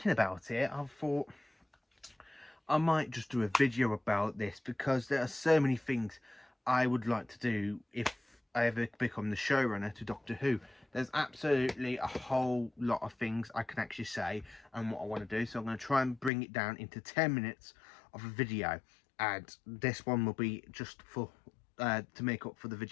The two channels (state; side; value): drops out; right; at 16.3 s